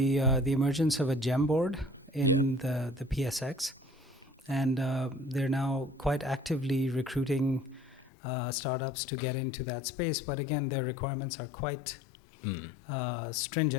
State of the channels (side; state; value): right; drops out; at 8.1 s